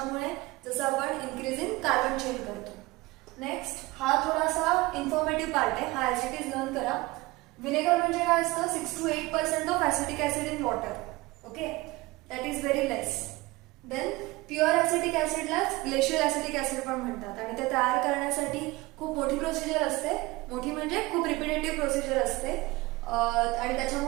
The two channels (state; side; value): quieter; left; 21.4 dB